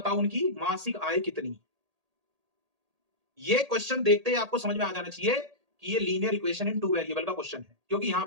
उनकी मासिक आय कितनी। ये क्वेश्चन देखते ही आपको समझ में आ जाना चाहिए कि ये लीनियर इक्वेशन इन 2 वेरिएबल का क्वेश्चन है, क्योंकि यहां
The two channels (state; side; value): late; left; 1.8 ms